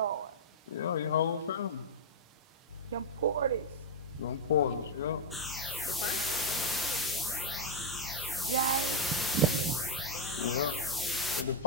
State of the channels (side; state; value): both; normal; correlation 0.00